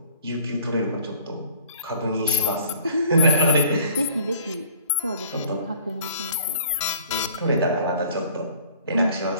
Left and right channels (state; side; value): inverted; both; correlation -0.54